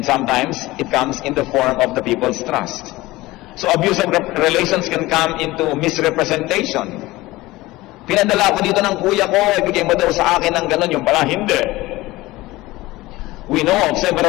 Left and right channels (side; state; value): right; quieter; 19.1 dB